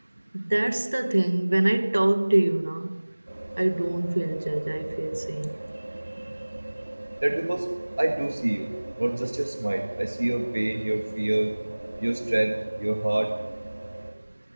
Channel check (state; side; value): inverted; both; correlation -1.00